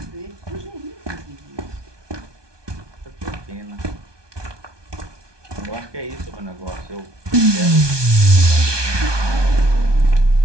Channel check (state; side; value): late; left; 1.2 ms